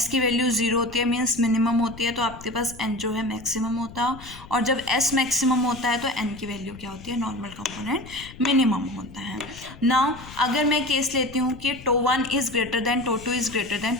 की वैल्यू 0 होती है मीन्स मिनिमम होती है, तो आपके पास n जो है मैक्सिमम होता है, और जब s मैक्सिमम होता है तो n की वैल्यू क्या होती है, नॉर्मल कंपोनेंट मिनिमम होता है। नाउ अगर मैं केस लेती हूँ कि tau 1 is greater than tau 2 is greater than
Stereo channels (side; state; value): left; noise; rumble, 17 dB below the sound